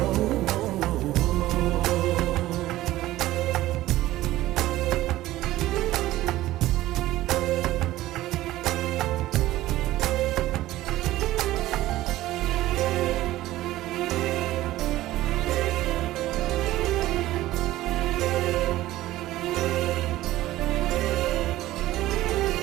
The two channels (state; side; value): quieter; left; 15.9 dB